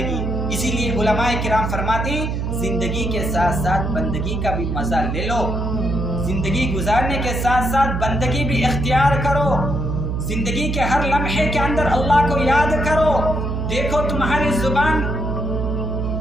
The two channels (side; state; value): right; noise; hum, 2 dB below the sound